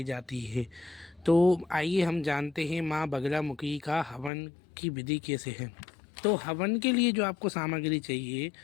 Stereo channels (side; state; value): right; drops out; at 4.3 s